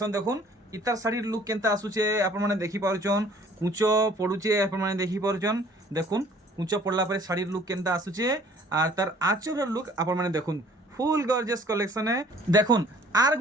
দেখুন ইতার শাড়ির লুক কেনতা আসুছে আপন মানে দেখি পারুছন কুচ পড়ুছে আপন মানে দেখি পারুছন দেখুন কুচ পড়লা পরে শাড়ির লুক কেনতা আসুছে আর তার আঁচলের লুক আপন মানে দেখুন ফুল গর্জিয়াস কলেকশনে দেখুন আর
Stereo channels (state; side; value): normal; both; correlation 0.55